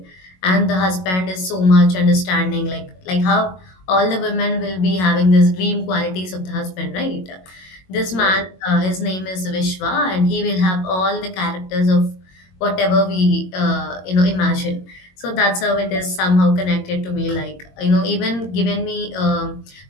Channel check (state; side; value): late; right; 22 ms